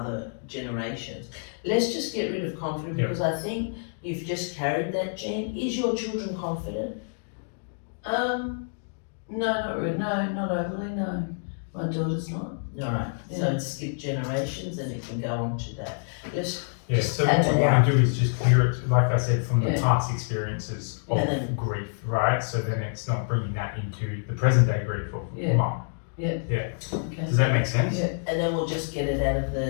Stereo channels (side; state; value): right; silent; digital silence